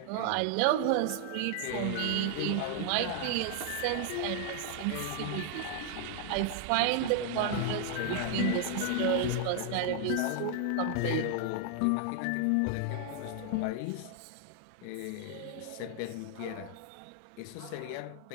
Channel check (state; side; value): different; both; correlation 0.00